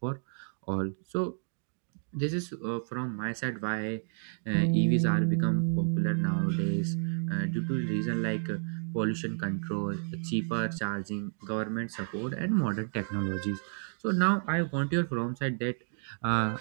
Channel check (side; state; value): left; silent; digital silence